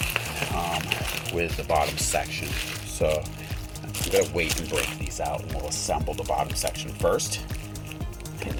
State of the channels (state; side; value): identical; both; correlation 1.00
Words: the bottom section. So I'm going to wait and break these out, and we'll assemble the bottom section first, and